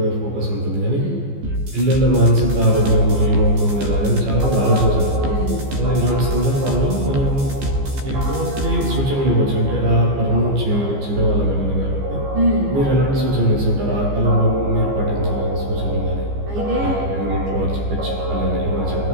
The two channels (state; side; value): late; left; 15 ms